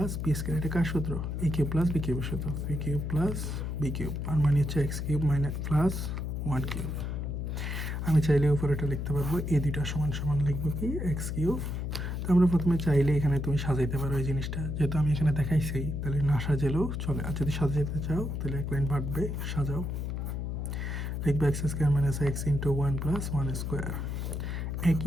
B square, এটা কার সূত্র? এ কিউব প্লাস বি কিউবের সূত্র, B cube plus B cube, আর মানে হচ্ছে X cube minus plus one cube. আমি চাইলে উপরে এটা লিখতে পারবো, এই দুইটা সমান সমান লিখবো কি এক্স কিউব। তো আমরা প্রথমে চাইলে এখানে তুমি সাজাইতে পারো এই জিনিসটা, যেহেতু আমি এখানে দেখাইছি তাহলে না সাজালেও চলে, আর যদি সাজাইতে চাও তাহলে এক লাইন বাড়বে, সাজাও। লিখবো x square minus x into one plus one square.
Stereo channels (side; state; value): left; noise; hum, 3 dB below the sound